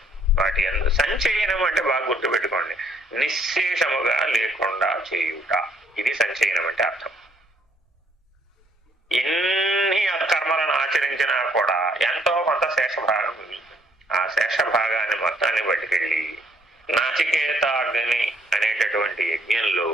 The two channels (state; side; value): normal; both; correlation 0.66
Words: వాటి అందు సంచయనం అంటే బాగా గుర్తుపెట్టుకోండి, నిశ్శేషముగా లేకుండా చేయుట. ఇది సంచయనం అంటే అర్థం. ఎన్ని కర్మలను ఆచరించినా కూడా ఎంతో కొంత శేషభాగం మిగులుతుంది. ఆ శేషభాగాన్ని మొత్తాన్ని పట్టుకెళ్ళి నాచికేతాగ్ని అనేటటువంటి యజ్ఞంలో